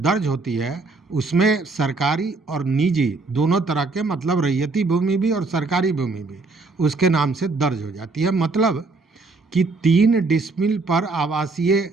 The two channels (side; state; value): left; quieter; 3.7 dB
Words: होती है उसमें सरकारी और निजी दोनों तरह के, मतलब रैयती भूमि भी और सरकारी भूमि भी उसके नाम से दर्ज हो जाती है। मतलब कि 3 डिसमिल पर आवासीय